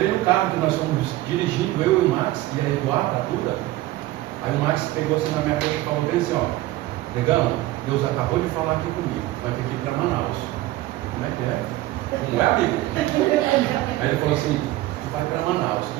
no carro, que nós fomos dirigindo, eu e o Max, e a Eduarda, a Duda, aí o Max pegou assim na minha coxa e falou bem assim, ó, negão, Deus acabou de falar aqui comigo, vai ter que ir para Manaus. Como é que é? Não é, amigo? Aí ele falou assim, tu vai para Manaus.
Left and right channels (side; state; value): left; quieter; 16.7 dB